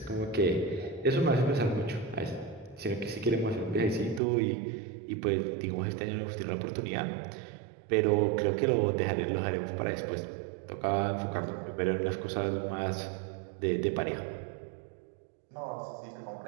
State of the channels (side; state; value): left; drops out; at 4.2 s